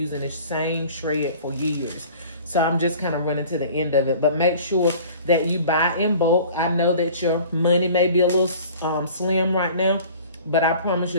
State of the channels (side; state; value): both; inverted; correlation -0.46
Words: this same shred for years. So I'm just kind of running to the end of it. But make sure that you buy in bulk. I know that your money may be a little slim right now, but I promise